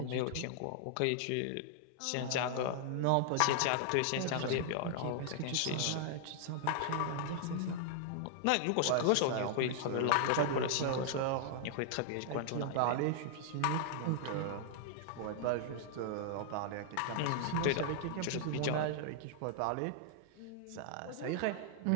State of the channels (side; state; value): both; different; correlation -0.01